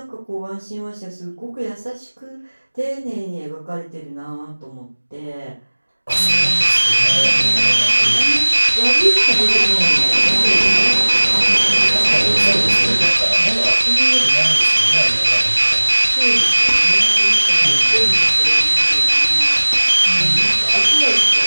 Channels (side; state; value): both; inverted; correlation -1.00